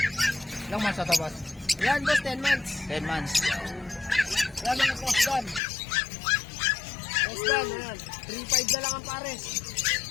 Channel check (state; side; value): drops out; right; at 5.6 s